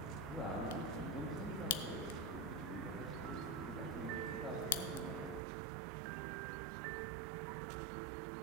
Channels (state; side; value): drops out; left; at 5.4 s